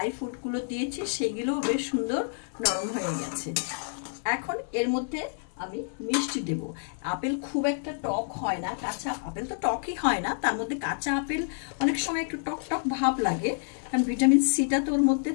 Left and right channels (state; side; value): silent; right; 59 dB below the other